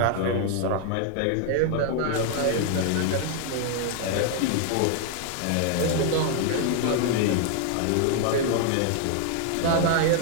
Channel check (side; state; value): both; different; correlation 0.00